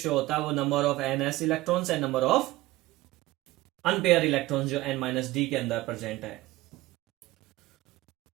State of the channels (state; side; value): quieter; left; 18.1 dB